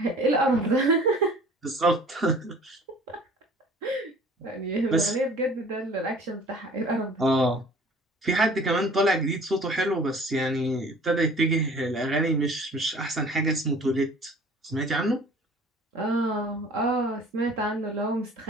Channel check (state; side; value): normal; both; correlation 0.49